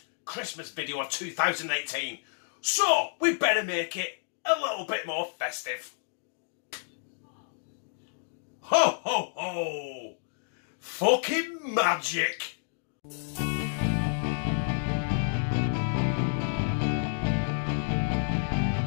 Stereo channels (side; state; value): right; silent; digital silence